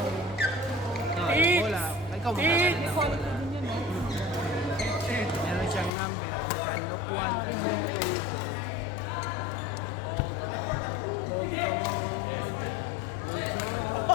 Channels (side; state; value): right; drops out; at 5.9 s